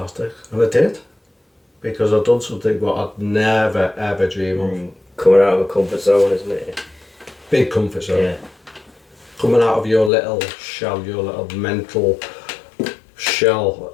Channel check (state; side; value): drops out; right; at 10.1 s